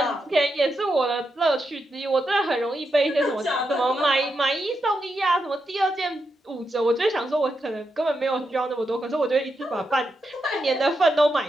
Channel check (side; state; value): both; normal; correlation 0.85